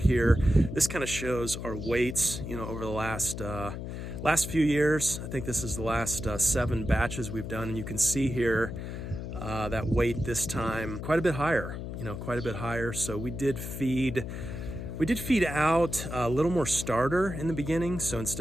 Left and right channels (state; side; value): noise; left; hum, 7 dB below the sound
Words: here. This kind of shows our weights, you know, over the last few years. I think this is the last 7 batches we've done, and you can see here that weight this time quite a bit higher, you know, quite a bit higher. So we did feed We did feed out a little more starter in the beginning. So